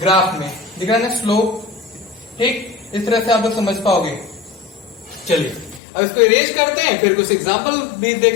में दिख रहा है, स्लोप, ठीक, इस तरह से आप लोग समझ पाओगे। चलिए अब इसको इरेज करते हैं, फिर कुछ एग्जांपल भी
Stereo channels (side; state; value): right; drops out; at 5.8 s